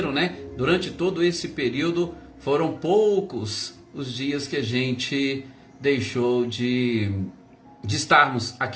né? Durante todo esse período foram poucos os dias que a gente deixou de estarmos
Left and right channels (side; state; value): both; identical; correlation 1.00